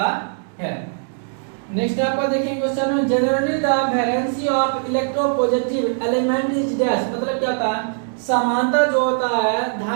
है। नेक्स्ट आपको देखेंगे question, generally the valency of electropositive element is dash. मतलब क्या होता है समांतर जो होता है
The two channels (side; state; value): left; silent; 65 dB below the other